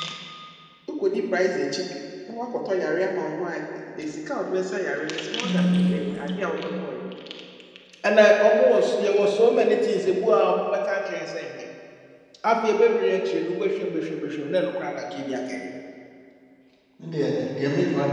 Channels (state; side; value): identical; both; correlation 1.00